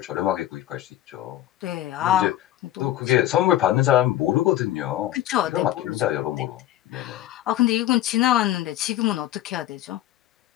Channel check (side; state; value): right; quieter; 13.6 dB